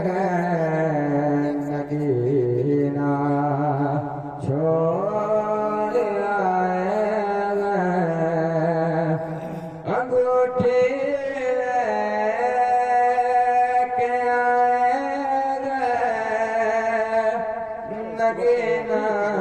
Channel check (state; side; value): identical; both; correlation 1.00